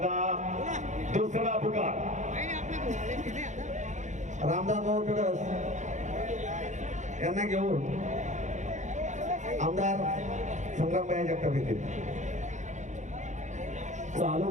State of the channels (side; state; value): left; late; 0.35 ms